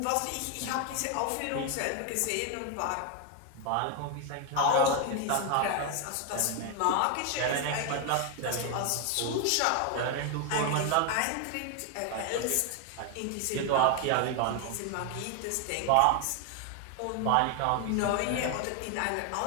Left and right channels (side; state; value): both; different; correlation 0.01